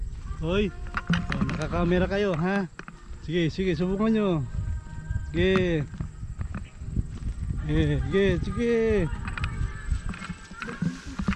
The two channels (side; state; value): both; identical; correlation 1.00